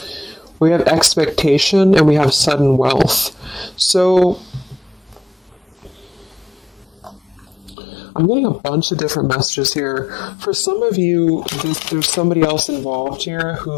We have expectation and we have sudden wealth. So I'm getting a bunch of different messages here. For some of you, there's somebody else involved here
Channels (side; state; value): right; drops out; at 7.8 s